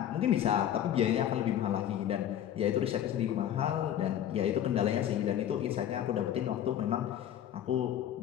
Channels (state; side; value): quieter; right; 10.7 dB